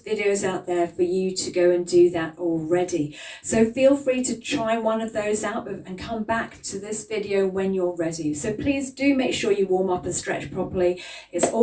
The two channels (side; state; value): both; identical; correlation 1.00